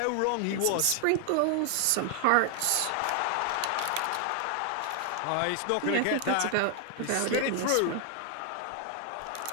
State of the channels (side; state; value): both; different; correlation 0.00